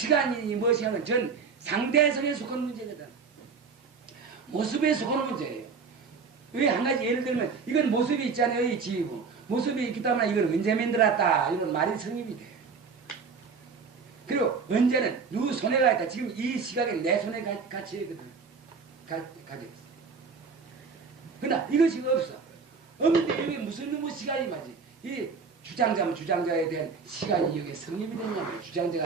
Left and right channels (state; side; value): quieter; left; 5.2 dB